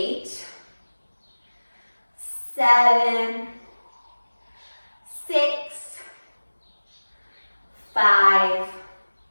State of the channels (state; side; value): inverted; both; correlation -1.00